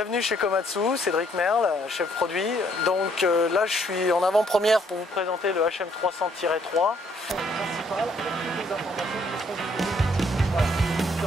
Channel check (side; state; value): both; normal; correlation 0.67